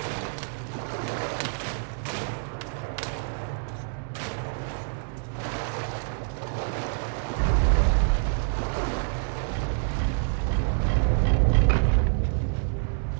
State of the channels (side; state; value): left; silent; 60 dB below the other